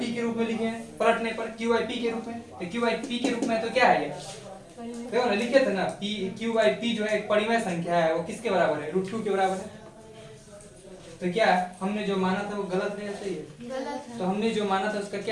के रूप में लिखे हैं। पलटने पर q/p के रूप में, तो q/p के रूप में तो क्या है ये? देखो ना, लिखे थे ना q/p जो है एक परिमेय संख्या है, वो किसके बराबर है? √2 के बराबर है। तो क्या हमने जो माना था वो गलत है या सही है? गलत है। तो हमने जो माना था उसका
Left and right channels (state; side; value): identical; both; correlation 1.00